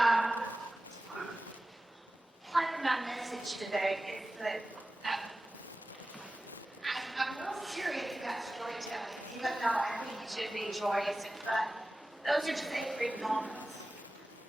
part of my message today is that I'm real serious about storytelling, even though I think it should be joyous and fun. Those are sacred moments.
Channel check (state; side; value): normal; both; correlation 0.95